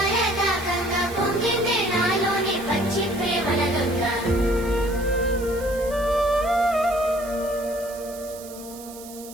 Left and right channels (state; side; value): noise; right; hiss, 16 dB below the sound